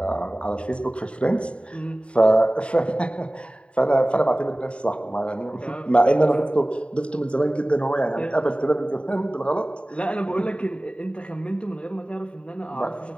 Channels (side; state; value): right; late; 0.059 ms